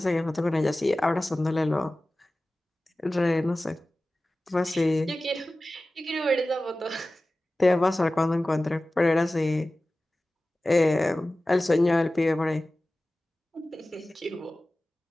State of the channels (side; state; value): both; normal; correlation 0.96